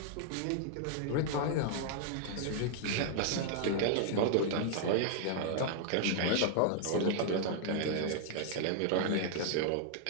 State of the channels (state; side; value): different; both; correlation -0.01